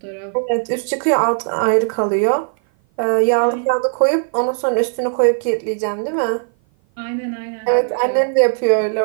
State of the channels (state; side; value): silent; left; 55 dB below the other